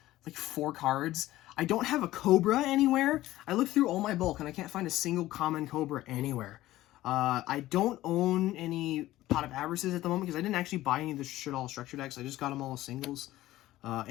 like 4 cards. I don't have a Cobra anywhere. I looked through all my bulk and I can't find a single common Cobra anywhere. I don't own any Pot of Avarices at the moment because I didn't actually buy any of the Shaddoll structure decks. I just got them all as singles.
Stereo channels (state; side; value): quieter; right; 15.8 dB